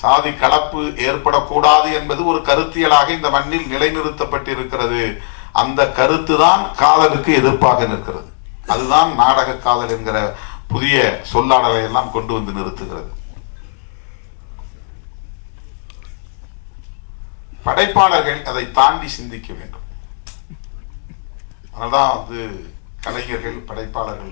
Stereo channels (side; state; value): right; silent; digital silence